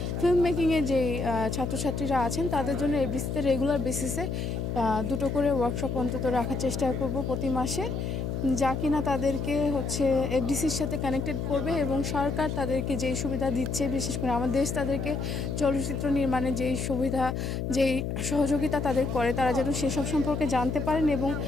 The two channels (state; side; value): noise; left; hum, 2 dB below the sound